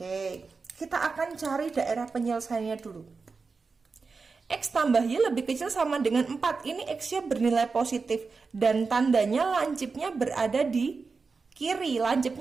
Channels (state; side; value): quieter; left; 4.5 dB